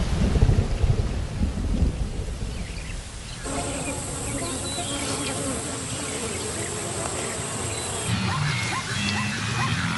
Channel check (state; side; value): identical; both; correlation 1.00